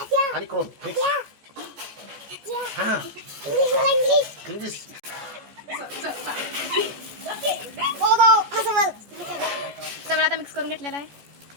आणि क्रोम मिक्स. इंग्लिश सगळं आता मिक्स करून घेतलेला आहे.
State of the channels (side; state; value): left; late; 14 ms